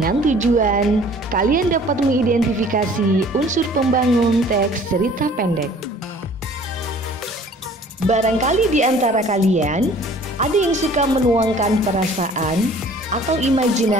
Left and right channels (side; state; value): both; normal; correlation 0.51